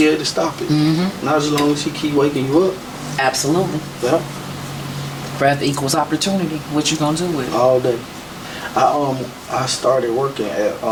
able to stop it. Not as long as he keep waking you up. Absolutely. Yeah. Breath equals opportunity. What you going to do with it? All day. I started working at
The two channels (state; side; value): identical; both; correlation 1.00